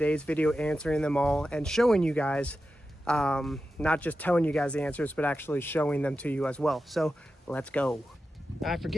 video, answering them all and showing you guys, not just telling you guys the answers, but actually showing them to you as well. So let's go. I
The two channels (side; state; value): both; normal; correlation 0.91